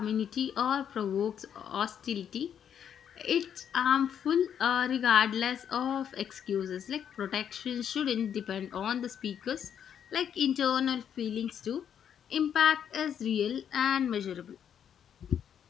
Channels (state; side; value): quieter; right; 8.7 dB